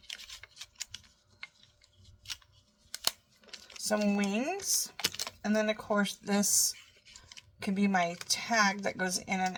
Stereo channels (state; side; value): identical; both; correlation 1.00